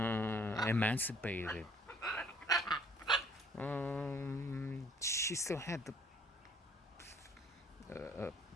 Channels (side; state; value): both; normal; correlation 0.59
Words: she still had the